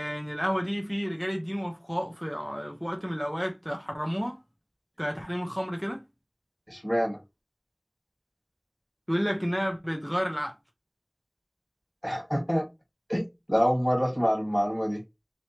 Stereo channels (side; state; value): both; identical; correlation 1.00